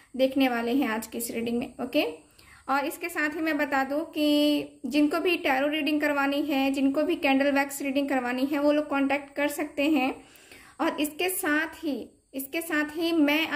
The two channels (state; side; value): identical; both; correlation 1.00